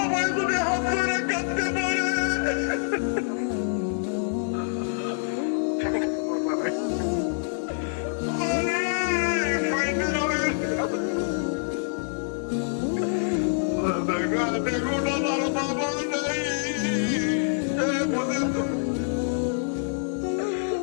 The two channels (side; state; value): right; silent; digital silence